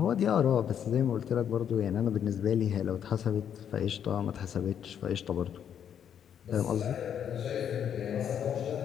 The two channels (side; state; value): right; quieter; 8.9 dB